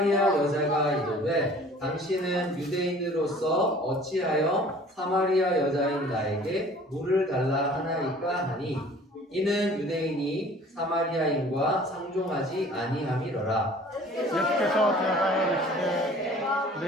여자가 이르되 당신은 유대인으로서 어찌하여 사마리아 여자인 나에게 물을 달라 하나이까 하니 이는 유대인이 사마리아인과 상종하지 아니함이로라. 예수께서 대답하여 이르시되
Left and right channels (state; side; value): normal; both; correlation 0.50